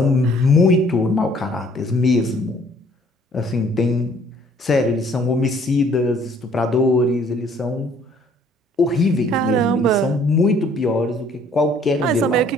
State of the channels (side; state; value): both; normal; correlation 0.59